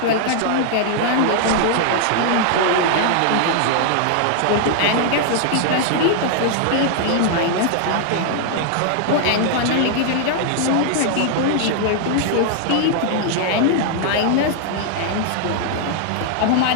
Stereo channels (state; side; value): different; both; correlation 0.00